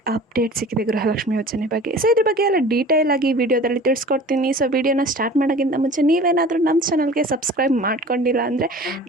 ಅಪ್ಡೇಟ್ ಸಿಕ್ಕಿದೆ ಗೃಹಲಕ್ಷ್ಮಿ ಯೋಜನೆ ಬಗ್ಗೆ. ಸೊ ಇದ್ರ ಬಗ್ಗೆ ಎಲ್ಲ ಡೀಟೇಲ್ ಆಗಿ ವಿಡಿಯೋದಲ್ಲಿ ತಿಳಿಸ್ಕೊಡ್ತೀನಿ. ಸೊ ವಿಡಿಯೋನ ಸ್ಟಾರ್ಟ್ ಮಾಡೋಕ್ಕಿಂತ ಮುಂಚೆ ನೀವೇನಾದರೂ ನಮ್ಮ ಚಾನಲ್ಗೆ ಸಬ್ಸ್ಕ್ರೈಬ್ ಮಾಡ್ಕೊಂಡಿಲ್ಲ ಅಂದರೆ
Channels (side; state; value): both; normal; correlation 0.42